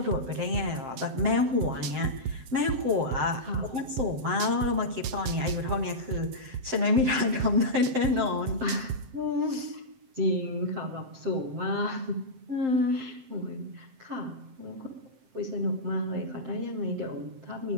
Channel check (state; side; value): late; left; 7.7 ms